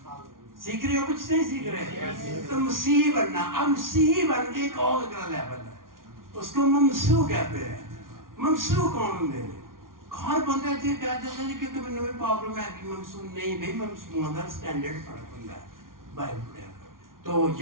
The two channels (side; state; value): left; late; 0.91 ms